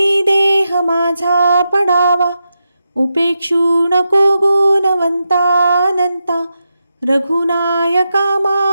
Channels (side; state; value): both; inverted; correlation -0.87